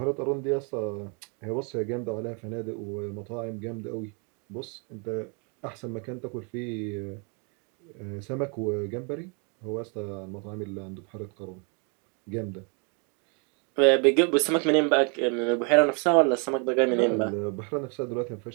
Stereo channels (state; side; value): quieter; left; 36.2 dB